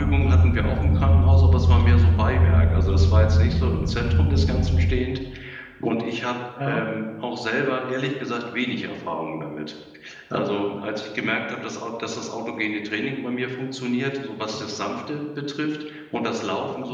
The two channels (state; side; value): identical; both; correlation 1.00